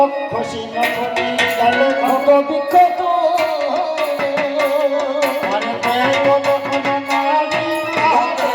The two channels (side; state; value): both; identical; correlation 1.00